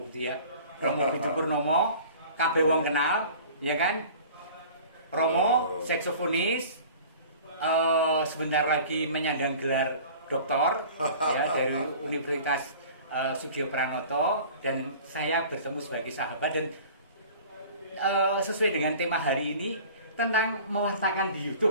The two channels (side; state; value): both; inverted; correlation -0.44